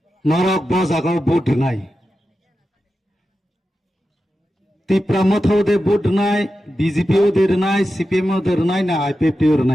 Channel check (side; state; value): both; normal; correlation 0.91